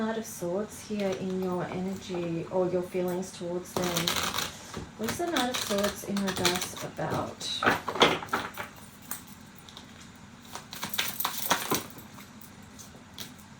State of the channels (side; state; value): both; identical; correlation 1.00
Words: of Swords here in your energy or your feelings towards them? What is the Knight of Swords in reverse about?